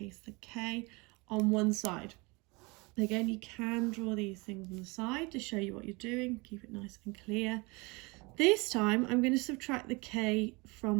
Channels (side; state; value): left; quieter; 26.6 dB